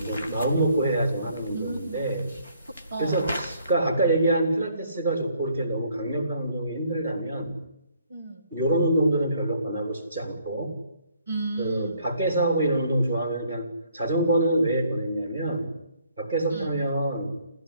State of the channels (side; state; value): both; inverted; correlation -0.65